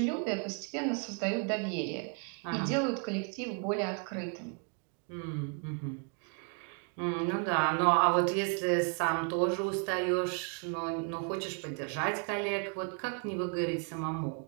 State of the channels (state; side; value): quieter; left; 39.0 dB